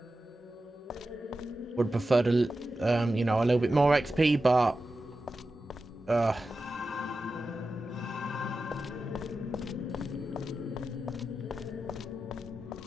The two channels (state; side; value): normal; both; correlation 0.92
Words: Would prefer to, you know, a little bit more XP, but